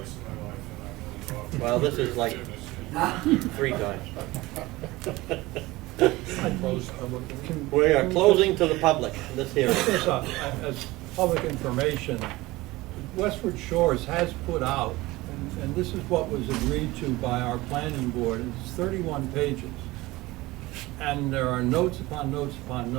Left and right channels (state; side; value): quieter; left; 19.9 dB